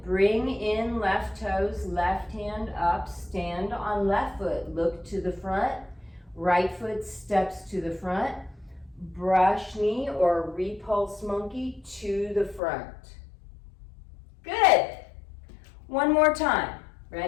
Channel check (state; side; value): drops out; right; at 12.6 s